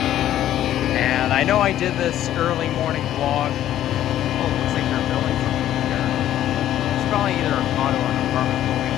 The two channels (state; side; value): quieter; right; 12.2 dB